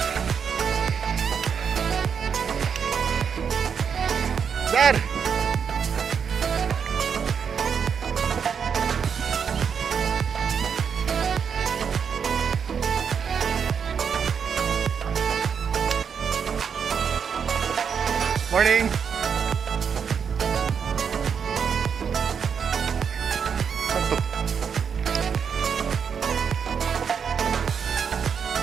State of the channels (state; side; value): quieter; left; 6.9 dB